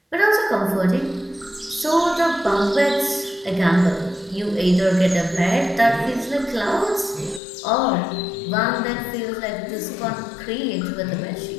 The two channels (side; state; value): right; drops out; at 7.4 s